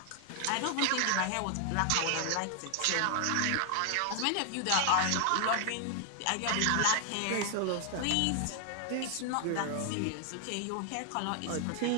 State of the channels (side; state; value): both; different; correlation 0.00